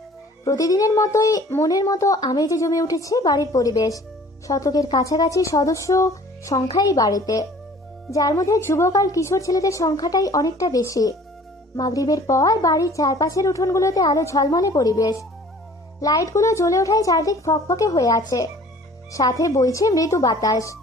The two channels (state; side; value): normal; both; correlation 0.50